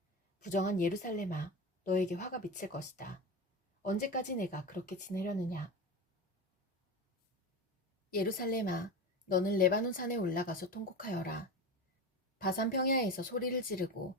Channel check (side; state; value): both; normal; correlation 0.25